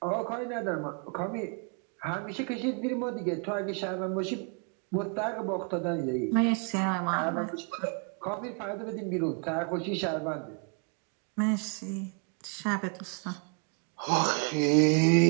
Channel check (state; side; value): quieter; left; 38.6 dB